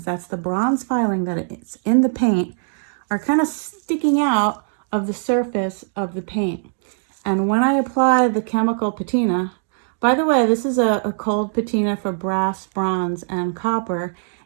that's the bronze filing that it's in the paint, are kind of sticking out of the surface of the paint. And when I apply the chemical patina, by the way, this is a cold patina for brass, bronze, and copper.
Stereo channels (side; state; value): left; silent; digital silence